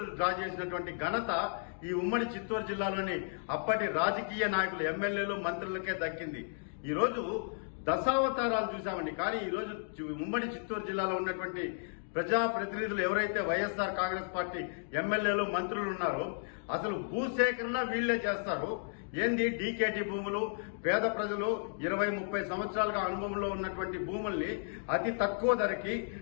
డ్రా చేసినటువంటి ఘనత ఈ ఉమ్మడి చిత్తూరు జిల్లాలోని అప్పటి రాజకీయ నాయకులు, ఎమ్మెల్యేలు, మంత్రులకే దక్కింది. ఈ రోజు దశావతారాలు చూశామండి. కానీ ఈ రోజు ఉమ్మడి చిత్తూరు జిల్లాలో ఉన్నటువంటి ప్రజాప్రతినిధులు ఎవరైతే వైఎస్ఆర్ కాంగ్రెస్ పార్టీ ఎమ్మెల్యేలు, మంత్రులు ఉన్నారో అసలు భూసేకరణ వీళ్లే చేస్తారు. ఏంది డీకేటీ భూములు, పేద ప్రజలు 20-30 సంవత్సరాలుగా అనుభవంలో ఉన్నటువంటి భూముల్ని అతి తక్కువ ధరకి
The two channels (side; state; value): right; silent; digital silence